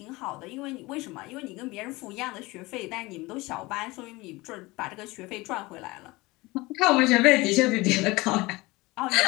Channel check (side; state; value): right; quieter; 22.1 dB